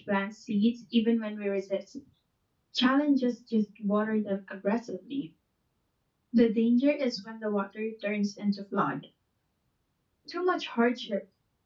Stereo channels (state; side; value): identical; both; correlation 1.00